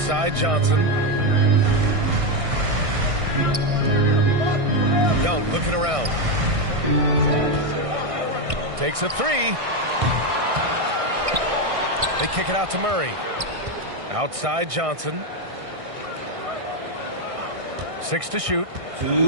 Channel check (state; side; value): late; left; 1.6 ms